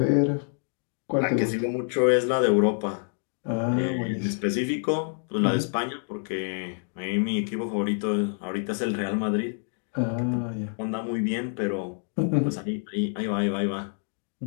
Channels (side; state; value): right; silent; 60 dB below the other